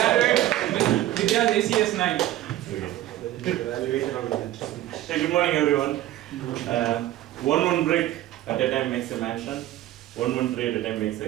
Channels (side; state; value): left; quieter; 14.3 dB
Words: Vidya's ACS 9. Hey, good morning everyone. One brick at a time makes a mansion, one tree at a time makes a